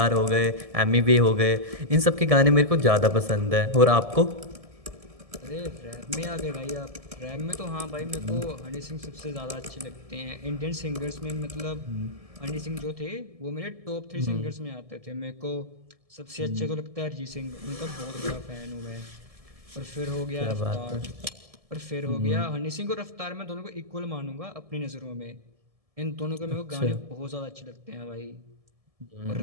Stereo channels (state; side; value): late; left; 1.7 ms